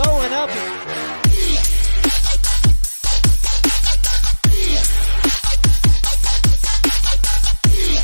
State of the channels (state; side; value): inverted; both; correlation -1.00